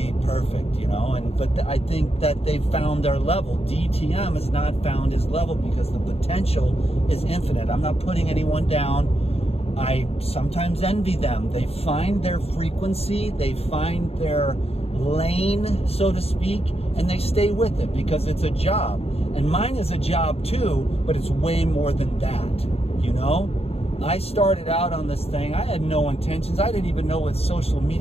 perfect, you know. But I think that they've found their level. DTM has not found his level because the potential is infinite. I'm not putting anyone down. I sometimes envy them. They find their frequency, they find their lane, so to speak, and they stay with it because it's a job. And mine is a job too, but it's way more than that, you know? I started out on this thing, I had no intentions. I didn't even know what social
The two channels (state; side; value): late; right; 0.29 ms